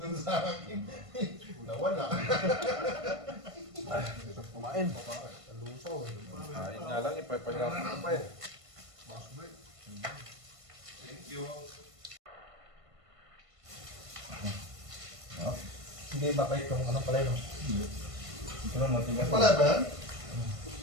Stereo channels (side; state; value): left; late; 1.5 ms